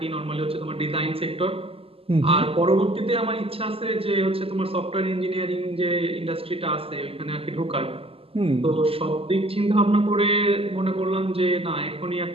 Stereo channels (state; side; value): late; left; 0.28 ms